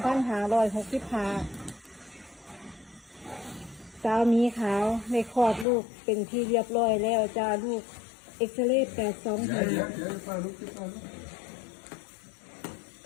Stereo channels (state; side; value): drops out; right; at 5.7 s